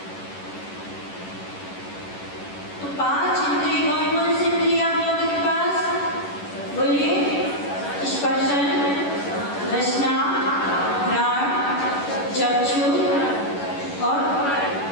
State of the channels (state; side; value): late; right; 11 ms